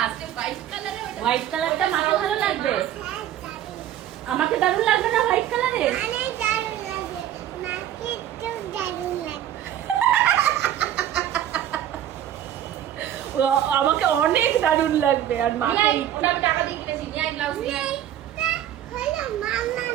হোয়াইট কালারে, হোয়াইট কালারটা মাকে ভালো লাগবে। হ্যাঁ, দারুণ। আমাকে দারুণ লাগবে না হোয়াইট কালারে? অনেক দারুণ লাগে, মাকে একটু দারুণ লাগে। আমাকে অনেক দারুণ লাগবে। আর মাকে ওটা আমি টাকা দিয়ে কিনেছি, নিয়ে আই ব্লাউজ নিয়ে আই। এইটা হলো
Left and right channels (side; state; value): left; quieter; 11.5 dB